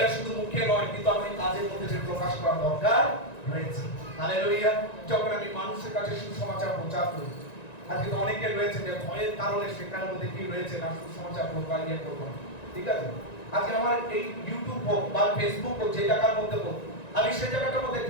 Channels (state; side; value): late; right; 1.9 ms